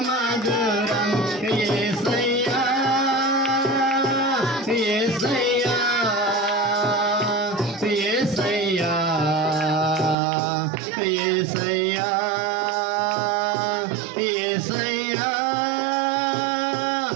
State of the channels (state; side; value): drops out; left; at 10.2 s